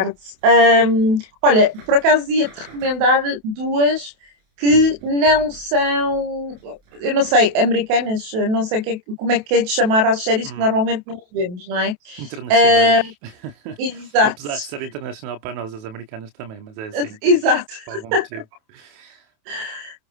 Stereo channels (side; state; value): left; late; 28 ms